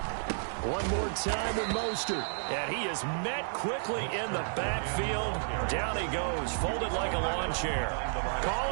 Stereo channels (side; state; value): left; silent; 57 dB below the other